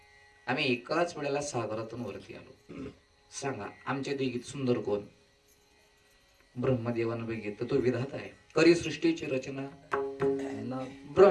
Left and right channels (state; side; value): identical; both; correlation 1.00